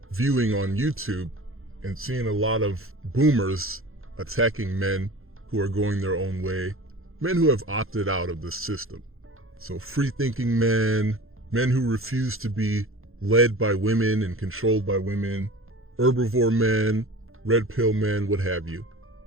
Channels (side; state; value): left; late; 0.61 ms